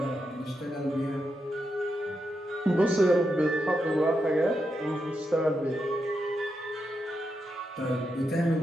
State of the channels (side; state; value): both; normal; correlation 0.85